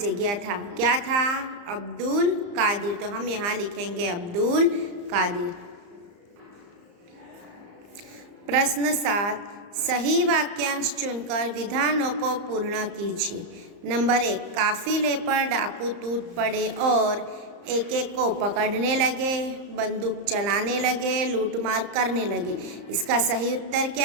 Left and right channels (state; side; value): late; left; 34 ms